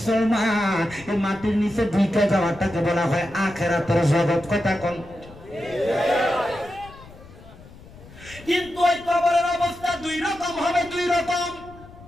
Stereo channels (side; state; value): left; noise; rumble, 20 dB below the sound